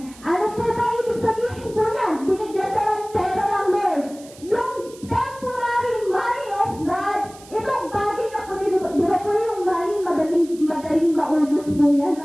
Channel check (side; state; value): right; noise; hiss, 21 dB below the sound